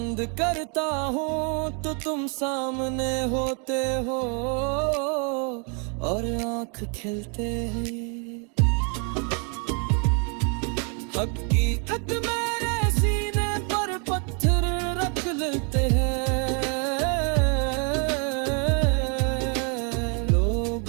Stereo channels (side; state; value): left; quieter; 37.9 dB